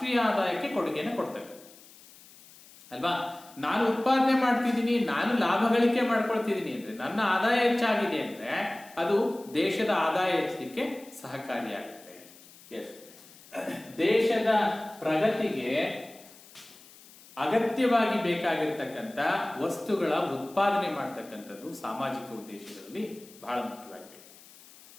ಆದಾಯಕ್ಕೆ ಕೊಡುಗೆಯನ್ನು ಕೊಡ್ತಕ್ಕಂಥದ್ದು ಅಲ್ವಾ. ನಾನು ಉತ್ಪಾದನೆ ಮಾಡ್ತಿದ್ದೀನಿ, ನಾನು ಲಾಭ ಗಳಿಕೆ ಮಾಡ್ಕೊಳ್ತಿದ್ದೀನಿ ಅಂದ್ರೆ, ನನ್ನ ಆದಾಯ ಹೆಚ್ಚಾಗಿದೆ ಅಂದ್ರೆ ಅದು ದೇಶದ ಆದಾಯ ಹೆಚ್ಚಲಿಕ್ಕೆ ಸಹಕಾರಿಯಾಗುತ್ತೆ. ದೇಶದ ಪ್ರಗತಿಗೆ ಅಗತ್ಯವಾಗಿ ಬೇಕಾಗಿರ್ತಕ್ಕಂಥ ವಸ್ತುಗಳ ಉತ್ಪಾದನೆ ಮಾಡ್ತಕ್ಕಂಥದ್ದು ಸಾಮಾಜಿಕ ಉದ್ದೇಶಗಳಲ್ಲಿ ಬಹಳ ಮುಖ್ಯವಾಗಿದೆ.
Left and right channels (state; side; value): noise; left; hiss, 22 dB below the sound